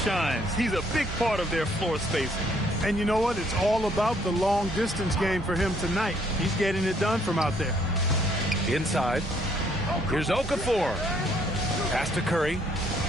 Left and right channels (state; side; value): normal; both; correlation 0.66